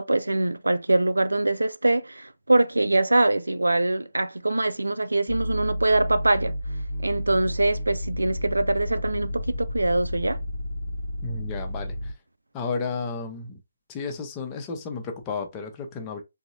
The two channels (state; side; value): inverted; both; correlation -0.95